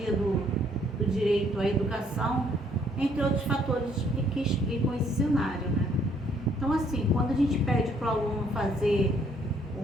do direito à educação, entre outros fatores que explicam esse cenário, né? Então, assim, quando a gente pede para o aluno fazer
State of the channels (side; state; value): both; normal; correlation 0.65